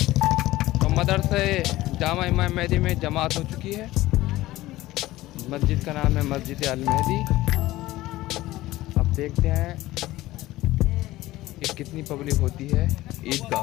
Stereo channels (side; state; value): right; quieter; 17.1 dB